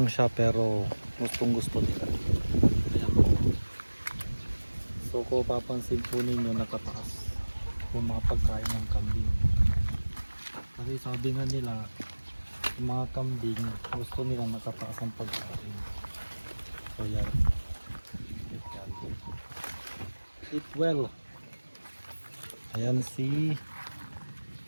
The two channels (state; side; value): inverted; both; correlation -1.00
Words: siya pero gustong gusto nila. Ayan po. So, kung papansin po ninyo, nakataas yung mga pagkain ng kambing. Kasi sabi nga nila, yung mga kambing gusto nila nakataas ang pagkain. So, yan. Eat well. Ayan si